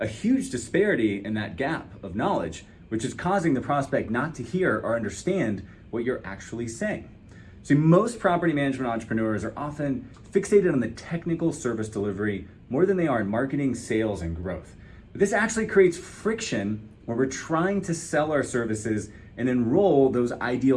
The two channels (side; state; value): both; identical; correlation 1.00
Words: huge disparity in that gap of knowledge, which is causing the prospect not to hear or understand what you're actually saying. See, most property management entrepreneurs are often fixated on the technical service delivery more than they are in marketing, sales, and growth. But this actually creates friction when we're trying to sell our services and enroll those